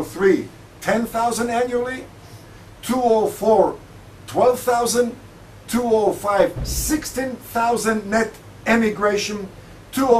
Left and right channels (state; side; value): identical; both; correlation 1.00